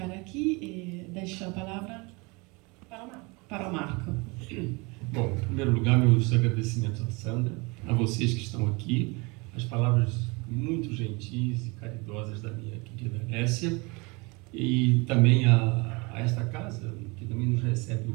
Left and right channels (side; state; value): left; quieter; 27.6 dB